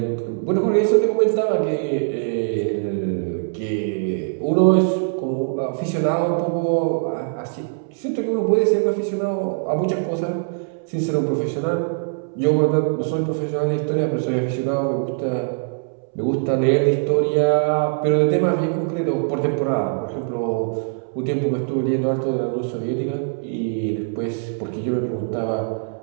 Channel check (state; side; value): silent; left; 64 dB below the other